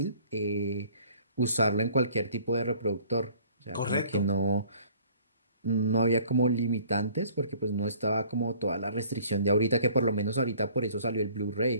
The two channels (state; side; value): inverted; both; correlation -0.54